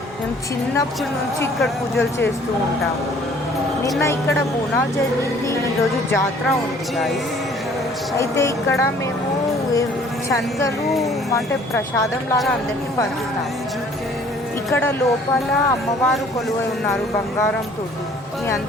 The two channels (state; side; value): normal; both; correlation 0.55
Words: మేము చిన్నప్పటి నుంచి ఇక్కడ పూజలు చేస్తూ ఉంటాము. నిన్న ఇక్కడ బోనాలు జరిగింది, ఈరోజు జాతర ఉంది గాయ్స్. అయితే ఇక్కడ మేము శనగలు అంటే ప్రసాదం లాగా అందరికీ పంచుతాము. ఇక్కడ లోపల అమ్మవారు కొలువై ఉన్నారు బంగారంతో. మీ